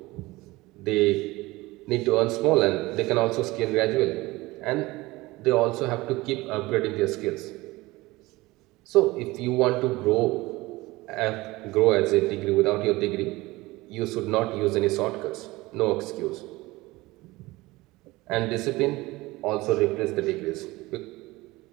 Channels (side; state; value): left; quieter; 20.4 dB